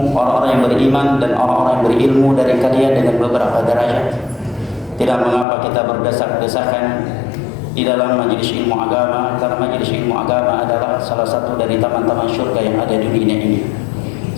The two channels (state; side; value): drops out; right; at 5.5 s